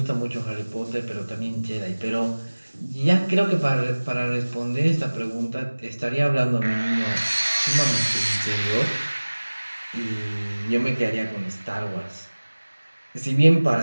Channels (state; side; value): inverted; both; correlation -1.00